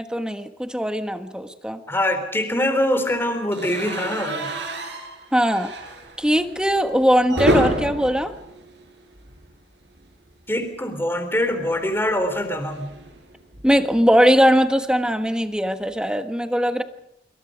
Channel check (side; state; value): both; normal; correlation 0.82